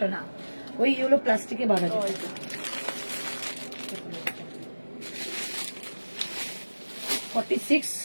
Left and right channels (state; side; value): inverted; both; correlation -1.00